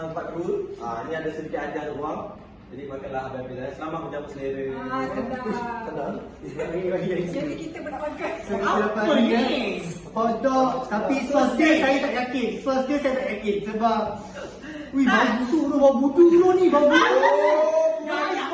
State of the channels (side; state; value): both; identical; correlation 1.00